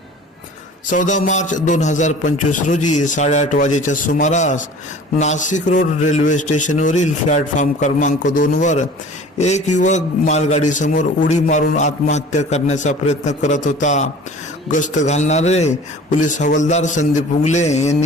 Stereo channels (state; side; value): normal; both; correlation 0.44